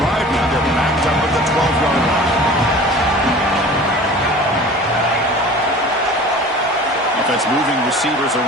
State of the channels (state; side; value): normal; both; correlation 0.41